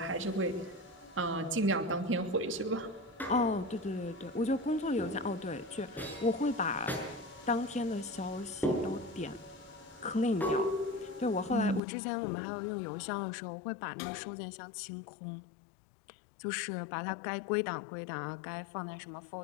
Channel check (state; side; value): drops out; right; at 11.8 s